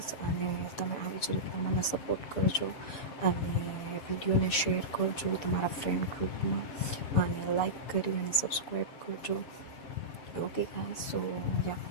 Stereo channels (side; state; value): right; late; 7.0 ms